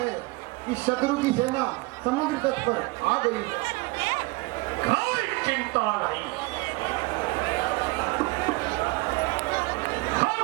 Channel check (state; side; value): quieter; left; 24.2 dB